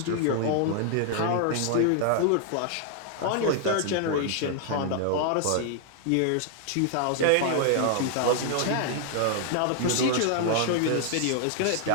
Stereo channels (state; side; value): different; both; correlation 0.00